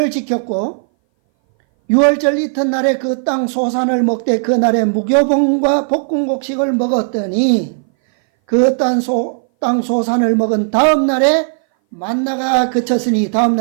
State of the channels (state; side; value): silent; left; 60 dB below the other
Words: 지켰고 유월절 이튿날에 그 땅 소산을 먹되 그날에 무교봉과 볶음곡식을 먹었더니 그 땅 소산을 먹은 다음 날에 만나가 그쳤으니 다음